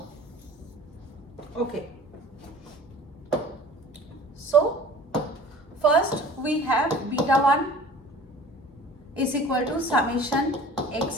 Okay, so first we have beta 1 is equal to summation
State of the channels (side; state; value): both; normal; correlation 0.44